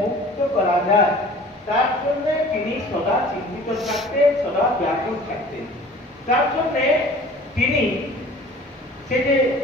মুক্ত করা যায়, তার জন্য তিনি সদা চিন্তিত থাকতেন, সদা ব্যাকুল থাকতেন। তার জন্য তিনি সে যে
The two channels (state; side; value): normal; both; correlation 0.46